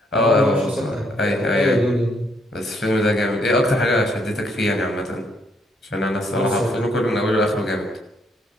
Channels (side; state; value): both; normal; correlation 0.71